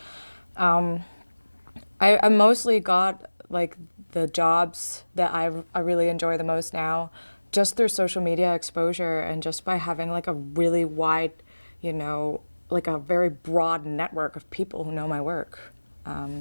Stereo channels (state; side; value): inverted; both; correlation -1.00